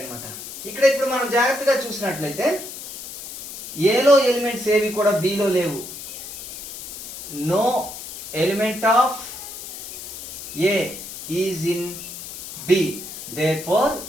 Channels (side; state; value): left; noise; hiss, 11 dB below the sound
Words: ఇక్కడ ఇప్పుడు మనం జాగ్రత్తగా చూసినట్లయితే ఏలో elements ఏవి కూడా బిలో లేవు. No element of A is in B. Therefore